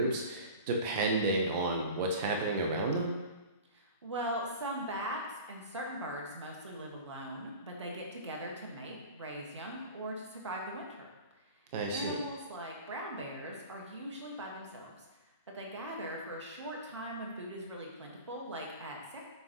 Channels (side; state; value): both; inverted; correlation -0.36